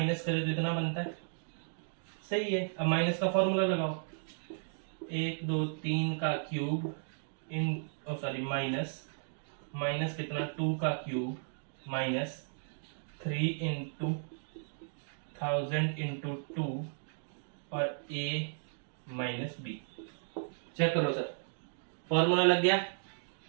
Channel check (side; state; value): left; silent; digital silence